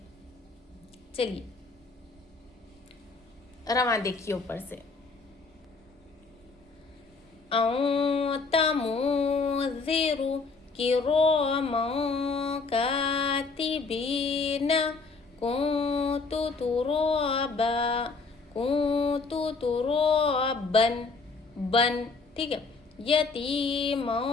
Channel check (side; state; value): right; quieter; 4.2 dB